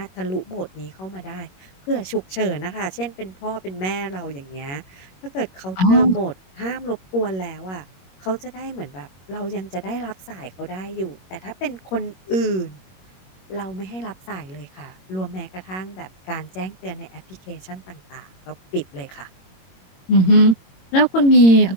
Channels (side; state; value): right; late; 21 ms